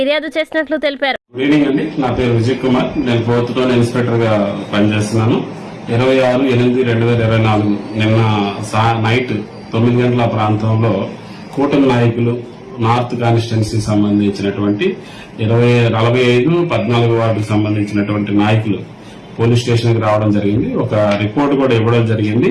చేసినట్లు తెలిపారు. గుడ్ ఈవినింగ్ అండి, నా పేరు విజయ్ కుమార్. నేను 4th టౌన్ ఇన్స్పెక్టర్ గా పనిచేస్తున్నాను. 26/8/2024 నిన్న నైట్ 9 గంటల ప్రాంతంలో కూటమి నాయకులు నార్త్ కాన్స్టిట్యున్సీ సంబంధించినటువంటి 45-14 వార్డుకు సంబంధించినటువంటి నాయకులు పోలీస్ స్టేషన్ కి రావడం జరిగింది. ఒక రిపోర్ట్ కూడా ఇవ్వడం జరిగింది.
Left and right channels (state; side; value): identical; both; correlation 1.00